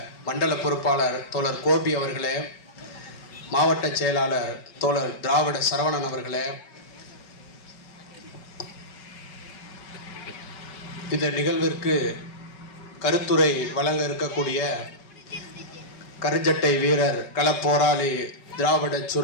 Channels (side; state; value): right; late; 5.3 ms